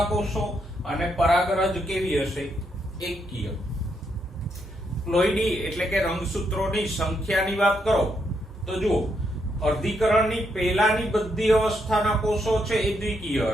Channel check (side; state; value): both; normal; correlation 0.78